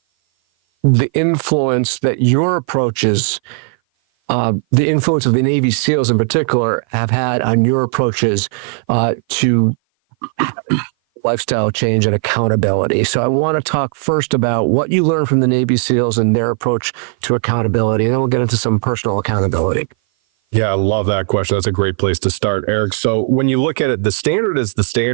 the influence that your approaches, the influence of the Navy SEALs in particular, have had on your approaches to lifestyle change and accountability. So I want to talk first about what you learned from the Navy SEALs and their approach to accountability, and then we'll get into some personal accountability. Yeah, I love that question. That's a great place to start, Eric. So when you look at it, the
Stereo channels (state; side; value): silent; left; 57 dB below the other